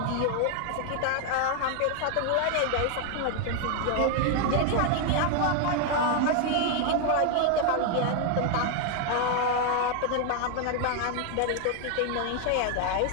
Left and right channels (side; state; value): both; different; correlation 0.00